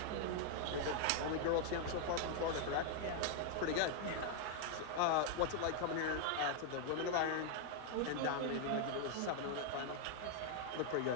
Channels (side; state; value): both; different; correlation 0.00